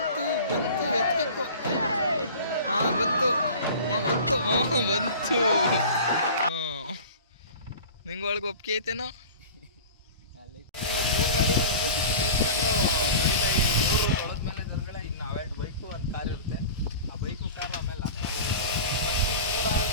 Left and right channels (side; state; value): both; inverted; correlation -0.38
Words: ಬಂತು. ನಿಂಗೆ ಒಳಗೆ ಒಪ್ಪಿಗೆ ಐತೇನೋ? 3 ಗಾಡಿನ ಒಂದೇ ಸಿಕ್ಕಿ ನಿಲ್ಸ್ಕೊಂಡು ತೊಳೆದ್ಮೇಲೆ ದೇವ್ರುಗಳೇ ಇನ್ನು ಅವೆರಡು ಬೈಕು ಒಂದು ಕಾರ್ ಇರುತ್ತೆ. ಆ ಬೈಕು ಕಾರು ಆಮೇಲೆ